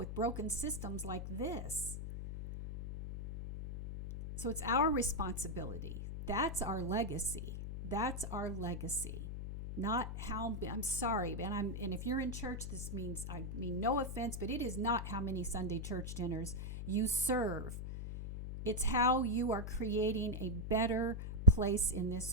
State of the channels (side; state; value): left; noise; hum, 6 dB below the sound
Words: broken systems like this. So it's our responsibility. That's our legacy. That's our legacy. Not how, I'm sorry, and if you're in church, this means, I mean no offense, but it is not how many Sunday church dinners you serve. It's how you are creating a better place in